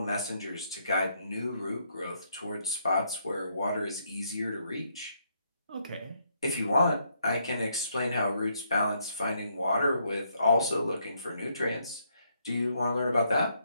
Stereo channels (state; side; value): inverted; both; correlation -0.74